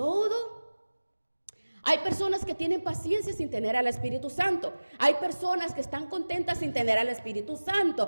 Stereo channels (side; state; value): both; inverted; correlation -1.00